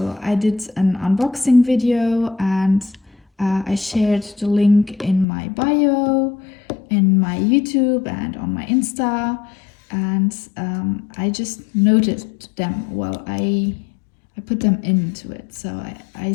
I did an unboxing video, and I shared the link in my bio, in my YouTube, and on my Insta. And I just noted them while I put them into it. So I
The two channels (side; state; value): right; drops out; at 5.2 s